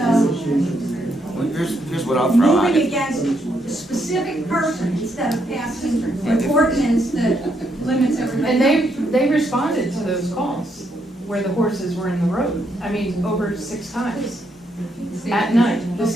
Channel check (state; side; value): normal; both; correlation 0.76